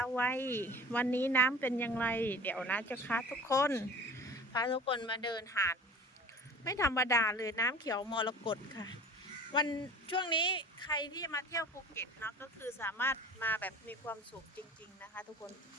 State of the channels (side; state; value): both; normal; correlation 0.41